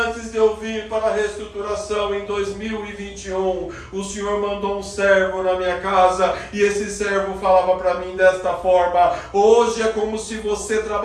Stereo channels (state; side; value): identical; both; correlation 1.00